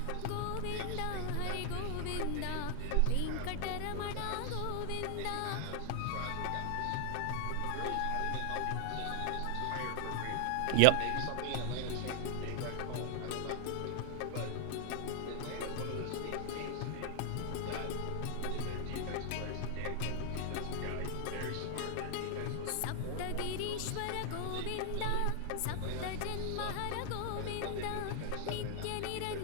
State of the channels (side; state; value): both; different; correlation 0.00